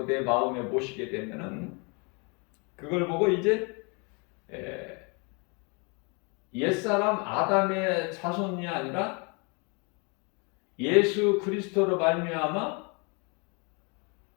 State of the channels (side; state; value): right; quieter; 32.8 dB